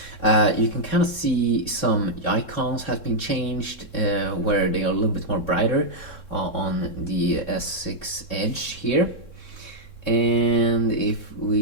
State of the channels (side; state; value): right; late; 3.7 ms